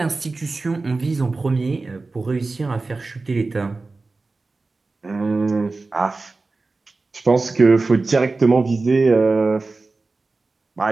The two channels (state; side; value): quieter; left; 3.6 dB